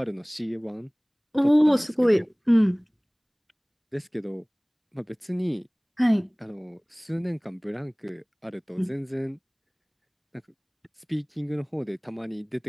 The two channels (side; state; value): both; identical; correlation 1.00